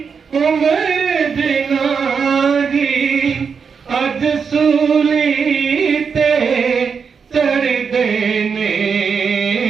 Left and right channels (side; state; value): left; quieter; 6.0 dB